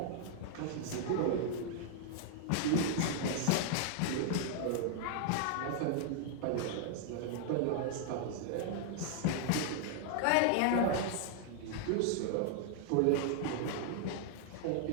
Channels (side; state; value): both; different; correlation 0.00